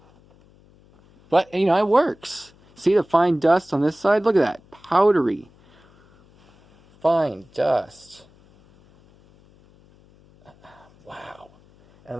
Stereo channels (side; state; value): left; noise; hum, 29 dB below the sound